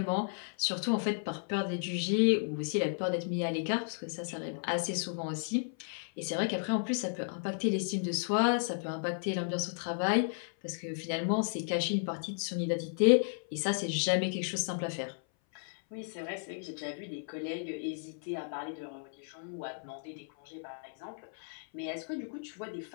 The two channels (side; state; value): right; silent; 55 dB below the other